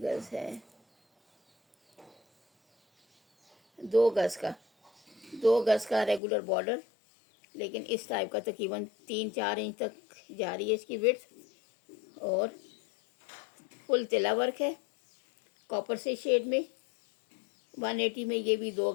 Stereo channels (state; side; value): drops out; right; at 6.2 s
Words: गज है? 2 गज का, 2 गज का रेगुलर बॉर्डर, लेकिन इस टाइप का तकरीबन 3-4 इंच तक जा रही है इसकी विड्थ, और फुल तिला वर्क है कॉपर से शेड में। 180 में ये भी 2